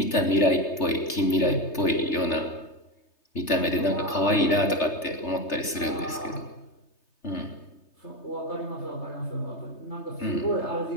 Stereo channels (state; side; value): late; right; 3.3 ms